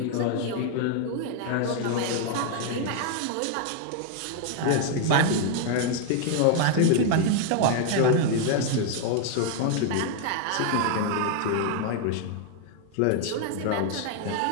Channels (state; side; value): different; both; correlation 0.00